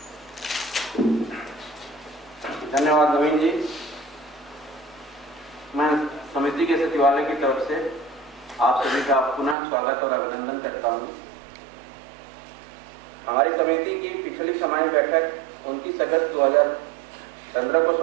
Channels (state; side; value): drops out; left; at 9.6 s